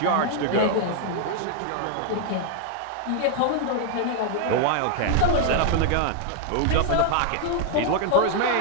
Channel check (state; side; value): different; both; correlation 0.00